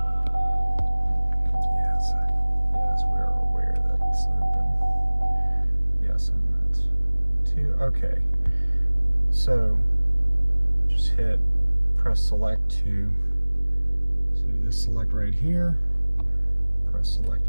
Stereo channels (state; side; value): inverted; both; correlation -1.00